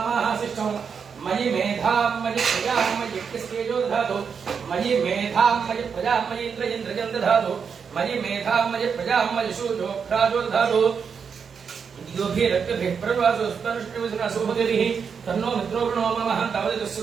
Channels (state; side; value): quieter; left; 6.3 dB